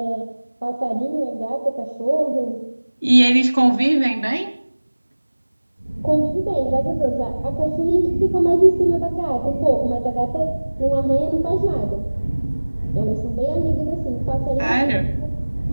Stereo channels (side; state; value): both; inverted; correlation -1.00